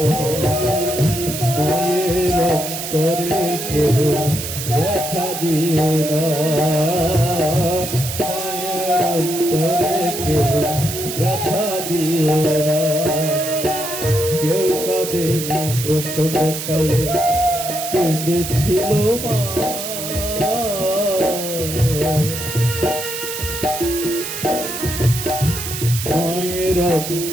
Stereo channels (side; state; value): right; noise; hiss, 6 dB below the sound